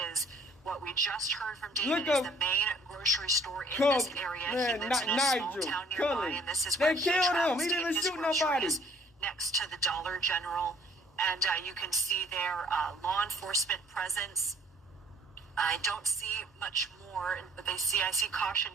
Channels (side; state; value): both; normal; correlation 0.58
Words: is what we just heard from David, is the main grocery store in this area. He lives in a small town nearby, and this is where he travels to get his groceries, next to the Dollar General. And you can see there law enforcement presence. I don't see much more, but I see caution